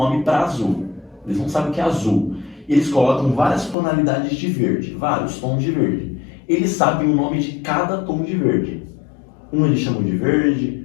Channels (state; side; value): drops out; right; at 3.8 s